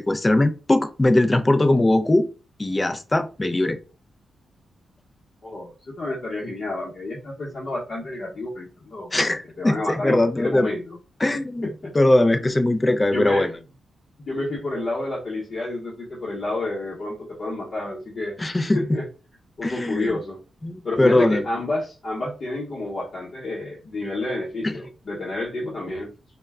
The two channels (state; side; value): normal; both; correlation 0.97